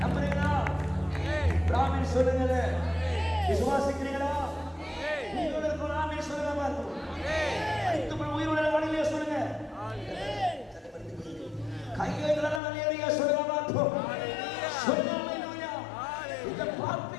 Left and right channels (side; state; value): right; drops out; at 12.6 s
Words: நம்புறீங்களா? ஆமென் சொல்லுங்க. விசுவாசிக்கிறீங்களா? உங்களுக்கு ஒரு ஆமென் சொல்லுங்க பாருங்க. அனைத்து உயிருள்ள வாணிலே சொல்லுங்க. கையேந்திரல ஹல்லேலூயா சொல்லுங்க பாருங்க. சொல்லுங்க ஹல்லேலூயா. இத